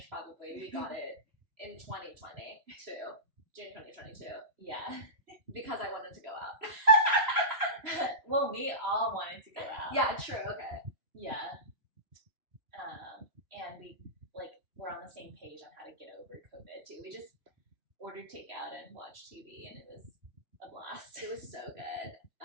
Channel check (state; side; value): late; left; 3.0 ms